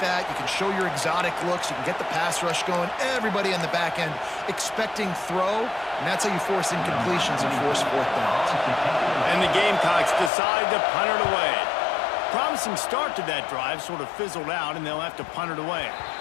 that, you can show your exotic looks, you can get the pass rush going, everybody on the back end expecting throw, and that's how you force incompletions and force fourth downs. And the Gamecocks decide to punt it away. Promising start to that drive sort of fizzled out, and they'll have to punt it away.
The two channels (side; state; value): right; drops out; at 10.3 s